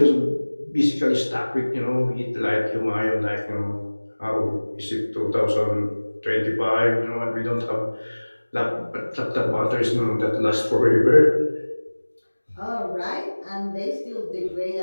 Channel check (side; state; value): both; inverted; correlation -1.00